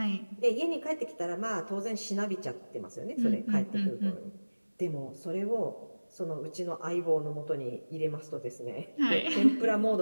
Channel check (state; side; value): inverted; both; correlation -1.00